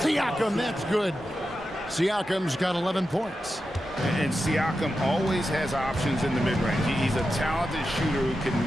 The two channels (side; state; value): both; normal; correlation 0.90